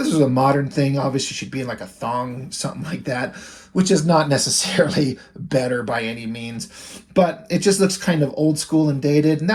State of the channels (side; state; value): both; identical; correlation 1.00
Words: is a modern thing. Obviously, she'd be in like a thong, something like that, which is not necessarily better by any means, but it just looks kind of old school and dated, and